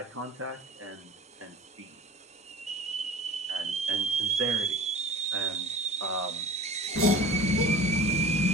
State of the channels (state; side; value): normal; both; correlation 0.40